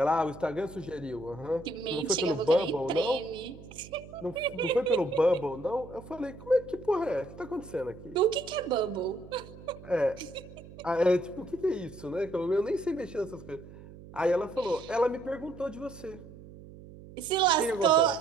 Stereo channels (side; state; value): right; noise; hum, 17 dB below the sound